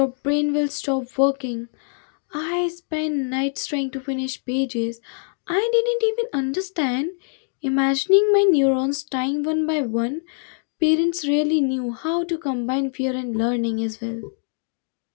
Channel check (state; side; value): silent; right; digital silence